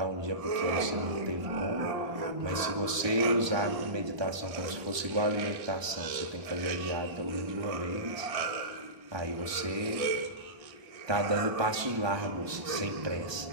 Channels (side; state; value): left; late; 1.2 ms